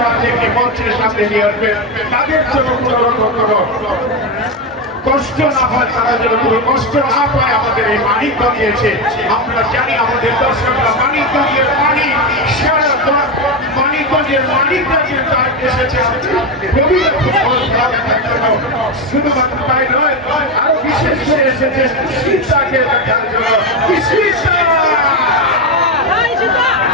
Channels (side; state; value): both; normal; correlation 0.11